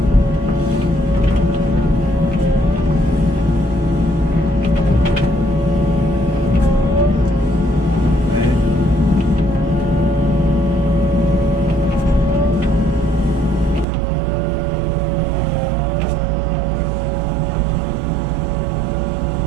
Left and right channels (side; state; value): left; drops out; at 13.9 s